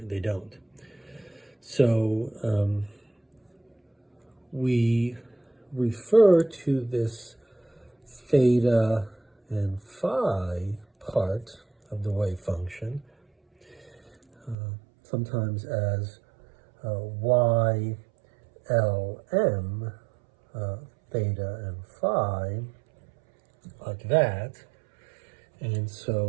don't. So we refer to this theta and phi part of the wave function sometimes as y, L, m, theta and phi, like that. And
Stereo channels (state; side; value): drops out; left; at 14.6 s